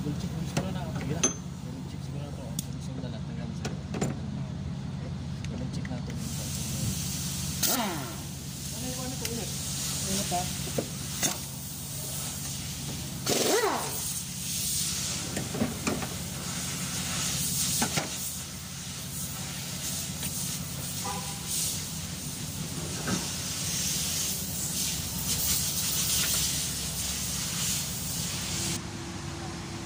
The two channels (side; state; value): both; identical; correlation 1.00